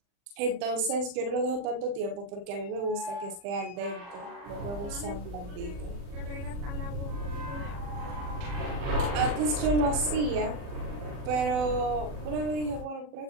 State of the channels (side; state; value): left; late; 40 ms